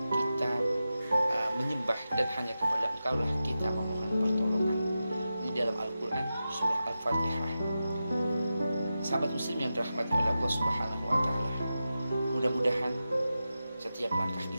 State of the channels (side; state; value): both; inverted; correlation -0.92